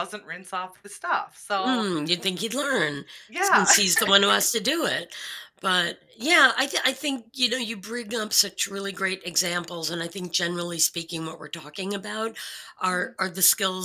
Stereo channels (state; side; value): identical; both; correlation 1.00